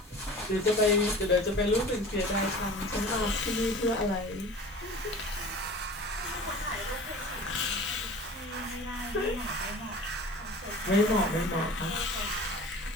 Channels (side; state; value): both; normal; correlation 0.40